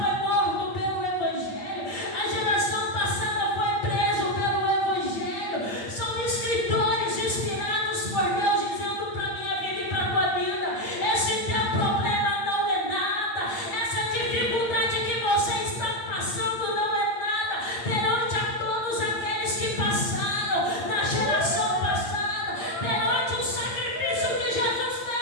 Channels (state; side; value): late; right; 8.5 ms